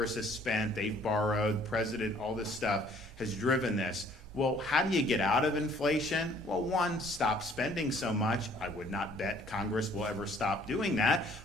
has spent, they've borrowed, president, all this stuff has driven this. Well, how do you get out of inflation? Well, one, stop spending so much. I would not bet Congress will ever stop doing that.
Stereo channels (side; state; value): both; normal; correlation 0.58